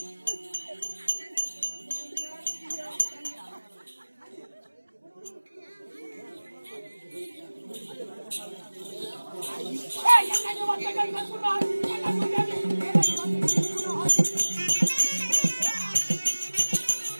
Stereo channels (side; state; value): both; inverted; correlation -1.00